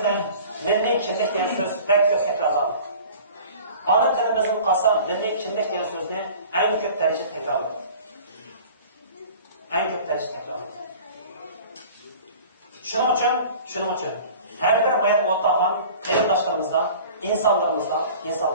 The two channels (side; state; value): both; inverted; correlation -0.44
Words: milliy kimlik degan so'z pek ko'p takrorlanadi. Ana tilimizning qolsa milliy kimlik degan so'zni eng ko'p darajada takrorlanadi. Shuning uchun har bir mayat o'rtog'an qarindoshlarımızdan, insonlarimizdan